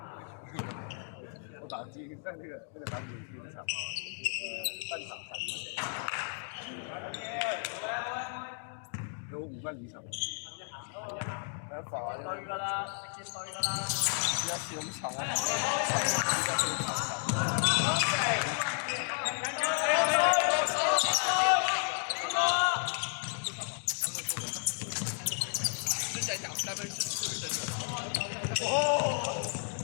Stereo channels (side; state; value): right; silent; 56 dB below the other